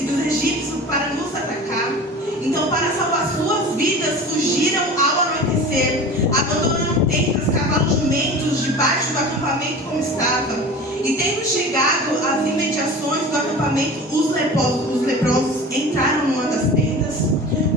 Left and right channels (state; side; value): normal; both; correlation 0.36